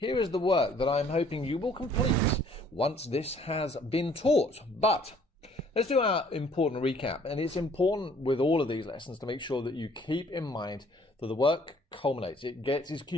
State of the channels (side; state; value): both; normal; correlation 0.59